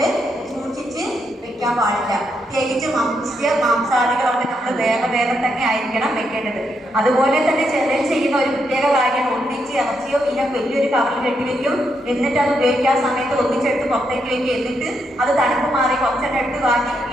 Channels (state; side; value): normal; both; correlation 0.79